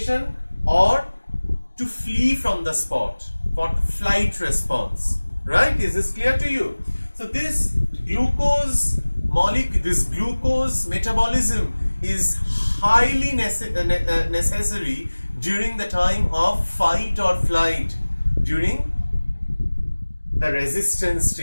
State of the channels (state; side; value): inverted; both; correlation -1.00